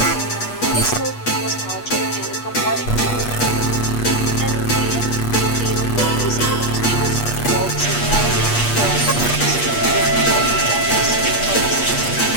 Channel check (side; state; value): right; late; 8.4 ms